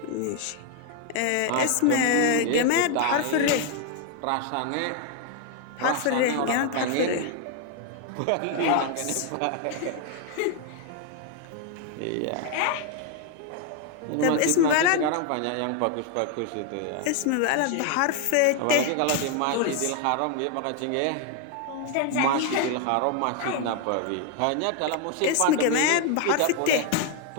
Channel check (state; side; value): different; both; correlation 0.00